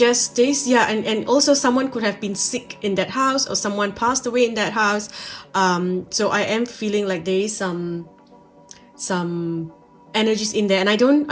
also someone could have been sick in that house, or someone passed away in that house. So I am feeling like there is some energies in there, and I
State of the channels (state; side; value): identical; both; correlation 1.00